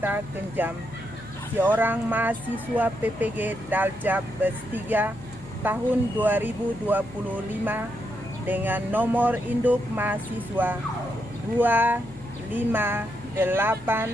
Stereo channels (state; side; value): noise; left; hum, 20 dB below the sound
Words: Kenjam, seorang mahasiswa PPG Daljab Bes3 tahun 2025 dengan nomor induk mahasiswa